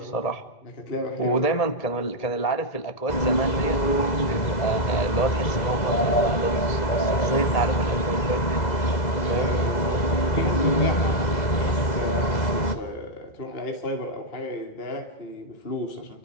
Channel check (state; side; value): late; right; 2.0 ms